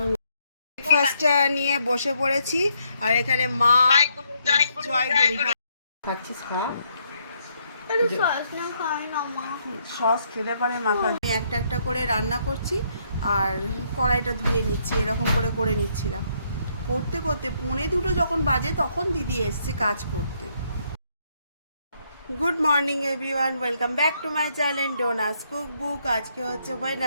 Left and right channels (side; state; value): both; inverted; correlation -0.73